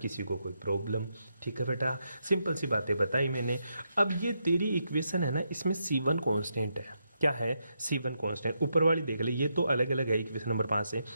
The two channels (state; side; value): inverted; both; correlation -0.82